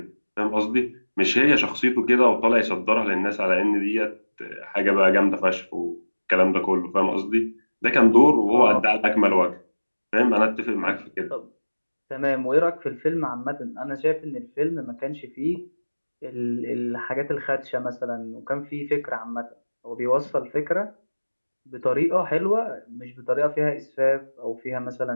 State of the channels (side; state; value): both; inverted; correlation -1.00